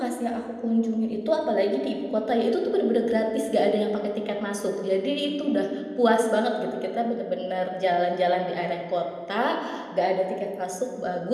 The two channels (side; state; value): both; identical; correlation 1.00